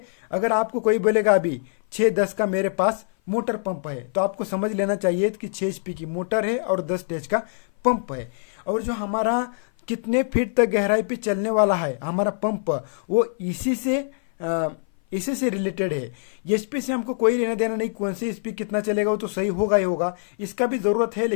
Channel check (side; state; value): right; silent; 57 dB below the other